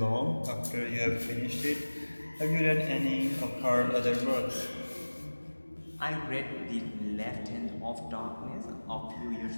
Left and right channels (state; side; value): inverted; both; correlation -1.00